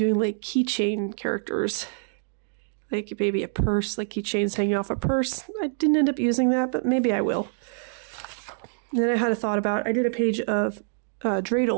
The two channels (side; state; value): left; silent; digital silence